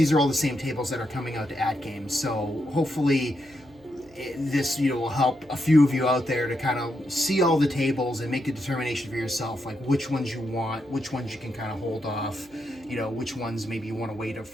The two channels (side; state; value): right; noise; hum, 27 dB below the sound